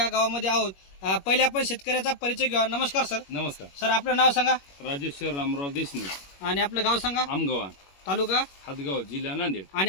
गावामध्ये आहोत। पहिले आपण शेतकऱ्याचा परिचय घेऊ। नमस्कार सर। नमस्कार सर, आपलं नाव सांगा। राजेश्वर रामराव देशमुख आणि आपलं गाव सांगा। आमगाव तालुका हातगाव, जिल्हा नांदेड।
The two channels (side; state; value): right; late; 21 ms